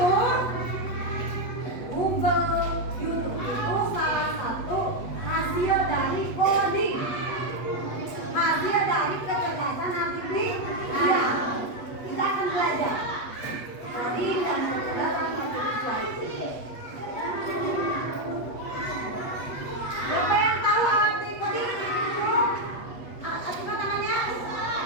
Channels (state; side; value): late; right; 8.3 ms